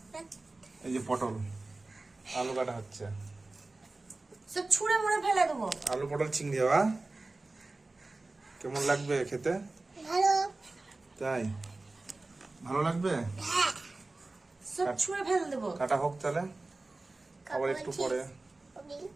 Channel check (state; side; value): quieter; left; 3.2 dB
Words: এই যে পটল আলু কাটা হচ্ছে, সব ছুঁড়ে মুড়ে ফেলে দেবো। আলু পটল চিংড়ি হওয়া কেমন লাগবে খেতে? ভালো। তাই ভালো লাগবে? সব ছুঁড়ে ফেলে দেবো। কাটা হোক তাহলে, আবার একটু পরে।